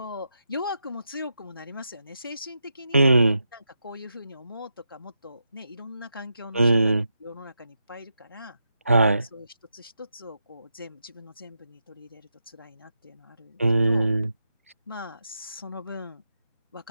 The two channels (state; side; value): inverted; both; correlation -0.86